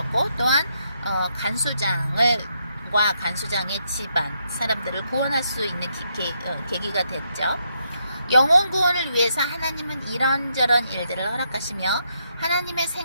또한 간수장을 간수장과 간수장의 집안 사람들을 구원할 수 있는 계기가 됐죠. 영혼 구원을 위해서 하나님은 이런저런 일들을 허락하시며 하나님의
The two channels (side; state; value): both; inverted; correlation -0.78